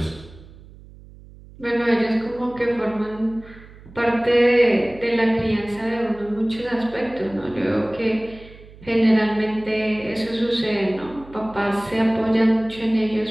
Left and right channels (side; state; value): right; noise; hum, 20 dB below the sound